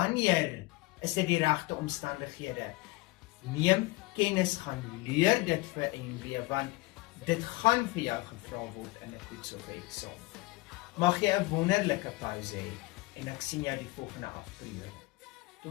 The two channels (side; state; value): right; quieter; 21.8 dB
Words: is dit die regte omstandighede. Neem kennis, gaan leer dit vir NW, want dit gaan vir jou gevra word in 'n toets of eksamen. Mag jy 'n wonderlike pouse hê, en ek sien jou die volgende afperiode.